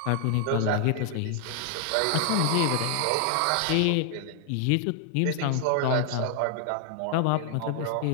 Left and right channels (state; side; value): different; both; correlation 0.00